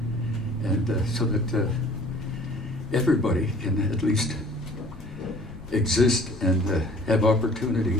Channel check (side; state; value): left; noise; rumble, 19 dB below the sound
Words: and so that everybody can at least exist and have opportunity